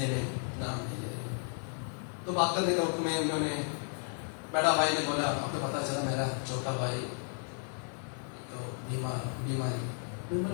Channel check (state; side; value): silent; right; 55 dB below the other